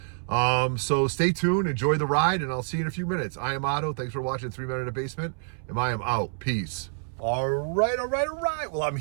So stay tuned, enjoy the ride, and I'll see you in a few minutes. I am Otto. Thanks for watching 3 Men in a Basement, and I am out. Peace. All right. Well, I'm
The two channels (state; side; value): silent; left; 60 dB below the other